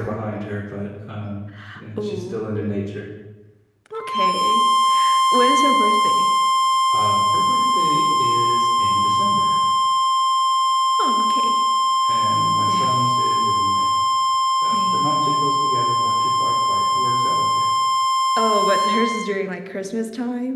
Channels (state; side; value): identical; both; correlation 1.00